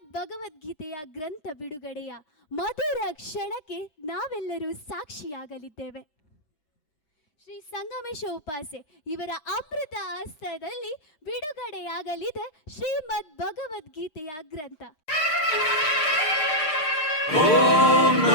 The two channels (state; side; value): late; right; 6.6 ms